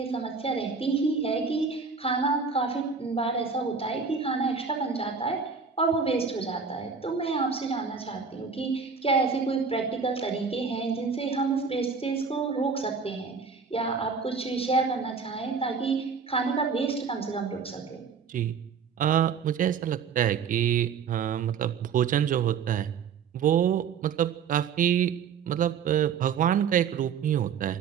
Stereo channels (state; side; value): quieter; left; 6.0 dB